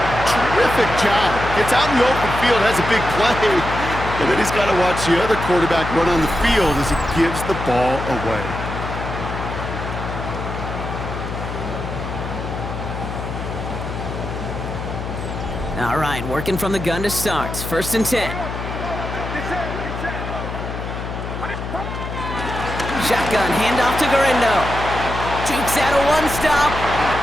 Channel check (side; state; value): left; noise; hum, 6 dB below the sound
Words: terrific job. Gets out in the open field, has a big play. And then he's got to watch the other quarterback run on the field as he gives the ball away. All right, working from the gun to start. 1st and 10. Shotgun, handoff to Garindo. Jukes out a one-stop.